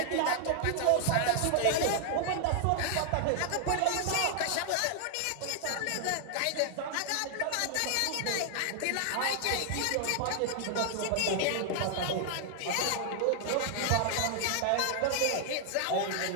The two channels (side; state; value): both; different; correlation 0.00